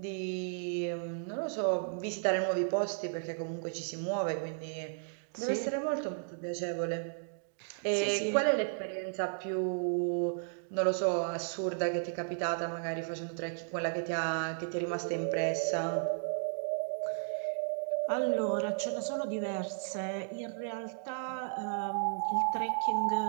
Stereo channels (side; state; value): left; silent; digital silence